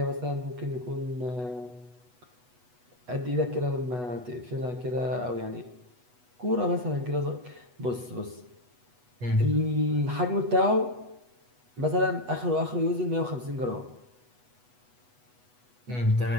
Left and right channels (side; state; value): left; late; 8.1 ms